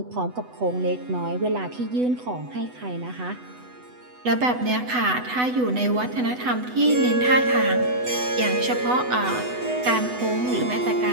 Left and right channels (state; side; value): late; left; 8.0 ms